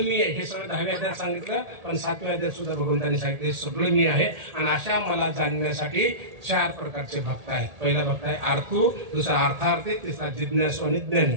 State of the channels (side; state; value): left; late; 1.8 ms